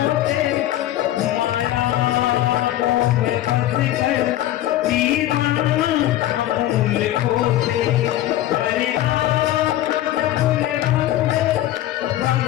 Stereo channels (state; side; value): quieter; right; 13.7 dB